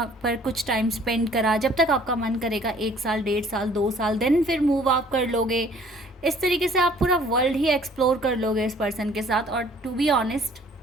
पर कुछ टाइम स्पेंड करा, जब तक आपका मन करेगा 1 साल 1.5 साल 2 साल, देन फिर मूव आप कर लोगे। इस तरीके से आप पूरा वर्ल्ड ही एक्सप्लोर कर लोगे इस पर्सन के साथ। और टू बी ऑनेस्ट,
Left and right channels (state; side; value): normal; both; correlation 0.56